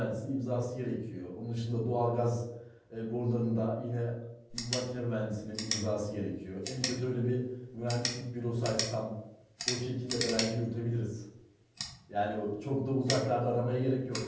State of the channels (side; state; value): both; identical; correlation 1.00